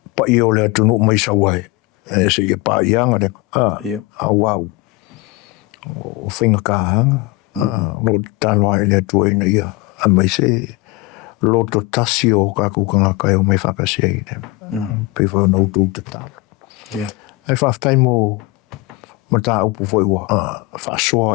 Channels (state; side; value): quieter; right; 21.4 dB